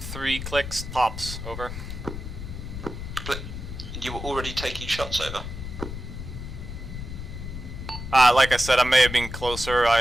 clicks tops, over. But you were already taking shots, over? Like I said, I may have been closer.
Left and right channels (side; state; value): left; noise; rumble, 8 dB below the sound